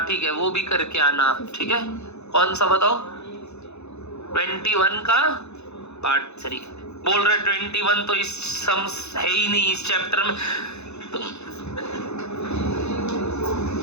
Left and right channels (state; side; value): late; right; 0.81 ms